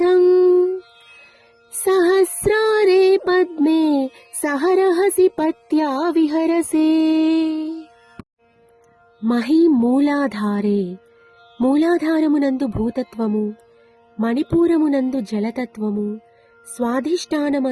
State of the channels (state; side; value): identical; both; correlation 1.00